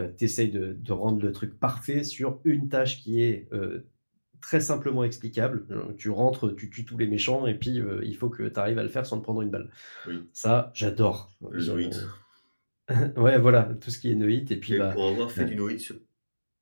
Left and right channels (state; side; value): inverted; both; correlation -1.00